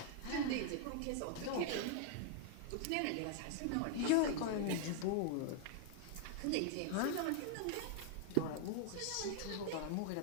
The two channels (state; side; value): different; both; correlation -0.01